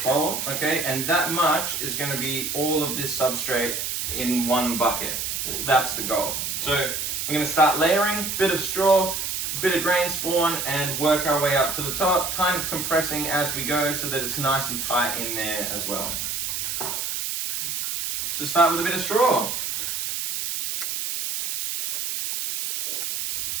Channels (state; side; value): noise; right; hiss, 2 dB below the sound